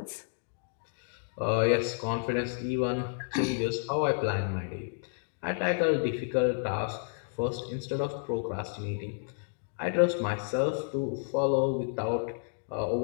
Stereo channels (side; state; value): right; silent; digital silence